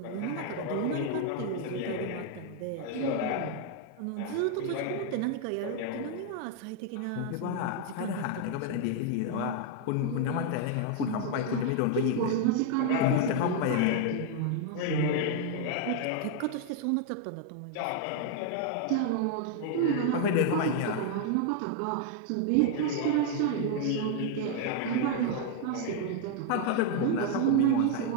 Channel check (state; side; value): different; both; correlation 0.00